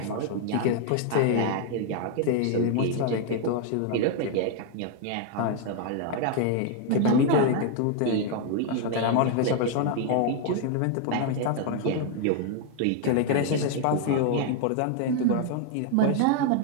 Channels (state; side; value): different; both; correlation 0.00